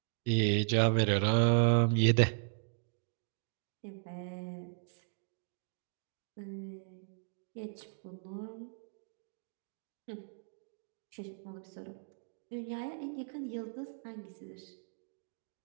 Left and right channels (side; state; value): left; silent; digital silence